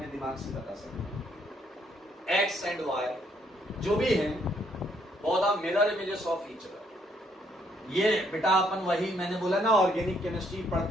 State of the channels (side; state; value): both; normal; correlation 0.70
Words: दिमाग से बता सकते हैं। एक्स एंड वाई जो भी है both are mirror images of each other. ये बेटा अपन वही मैंने बोला ना, ऑर्गेनिक केमिस्ट्री